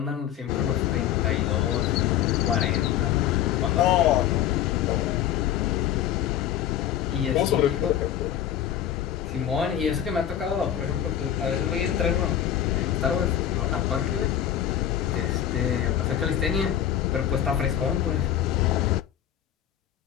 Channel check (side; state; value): right; quieter; 10.6 dB